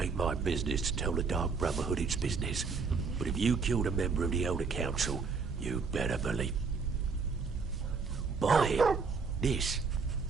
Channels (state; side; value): quieter; left; 5.0 dB